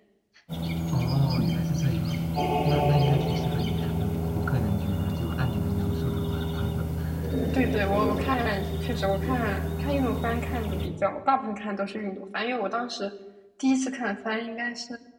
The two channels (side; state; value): both; identical; correlation 1.00